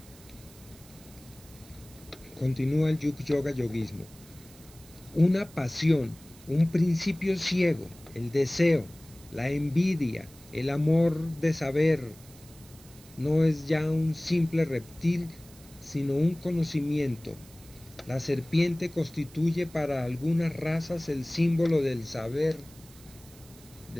Continúa el Yuk Yoga Yoguismo. Una pasión, un principio ciego, el deseo, la envidia, el amor de saber, no es ya un simple reptil, sino un conocimiento. La serpiente constituye para algunas razas el símbolo del saber,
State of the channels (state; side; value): noise; right; hiss, 22 dB below the sound